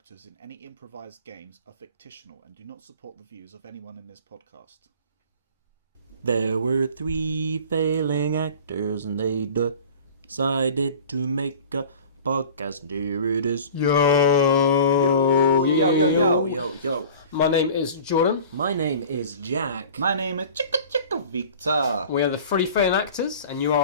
in any improvised games are fictional and do not support the views of anyone in this podcast. There were 3 failing actors and they decided to make a podcast, and here it is. Yo! Yo. My name is Jordan. My name is Jack. My name is Chicka Victor. We are the 3 failing actors, and you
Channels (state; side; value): inverted; both; correlation -0.41